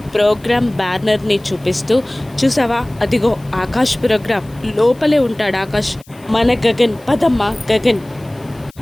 ప్రోగ్రాం బ్యానర్ని చూపిస్తూ, చూసావా అదిగో ఆకాష్ ప్రోగ్రాం, లోపలే ఉంటాడు ఆకాష్, మన గగన్, పదమ్మా గగన్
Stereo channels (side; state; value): left; noise; hiss, 28 dB below the sound